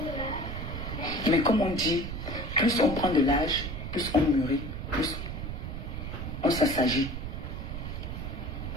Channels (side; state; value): right; noise; rumble, 6 dB below the sound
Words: Mais comme on dit, plus on prend de l'âge, plus on mûrit, plus on s'assagit.